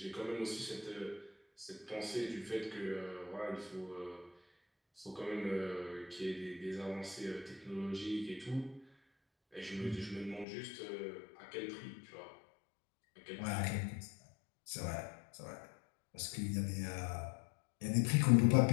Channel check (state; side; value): drops out; right; at 10.5 s